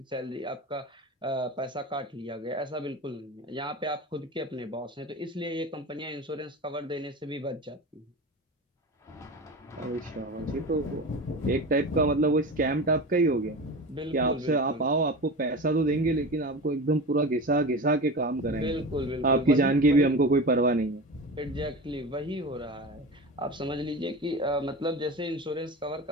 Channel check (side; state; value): both; normal; correlation 0.29